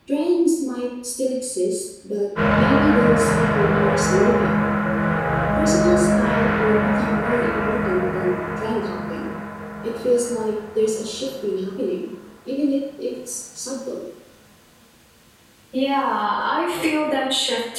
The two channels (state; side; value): identical; both; correlation 1.00